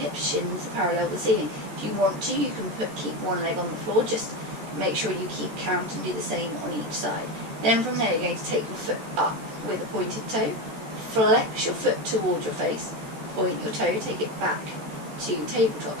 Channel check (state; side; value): late; left; 13 ms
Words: shins are parallel with the ceiling. If you want to, you can keep one leg on the floor. Just make sure you keep count and do the same on each side. Then from there you're going to take your foot up with a pointed toe, flex your foot towards your face, point your toe, take it back to tabletop.